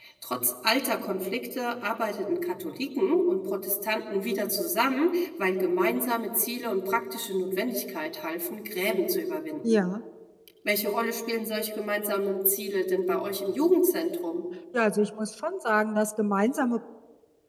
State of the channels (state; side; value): identical; both; correlation 1.00